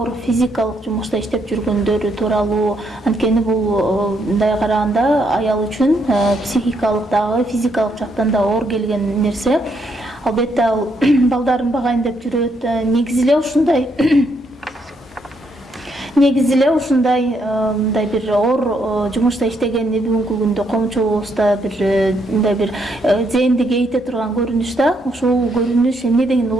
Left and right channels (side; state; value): both; normal; correlation 0.75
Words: физикалык жумушта иштеп жүргөндөрү тууралуу. Анткени бул мындай караганда аял үчүн психикалык дагы, физикалык жактан да оор келген нерсе. Албетте ал балдарын багайын деп жүрөт. Негизи эле ушундай мындай бир оор жумушта иштегенди бүгүнкү күндө коомчулугубузда мындай бир зээнди кейите турган көрүнүш да. Ушул көрүнүш эмнеден